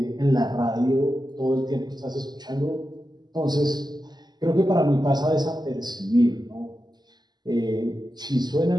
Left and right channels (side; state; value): left; late; 0.20 ms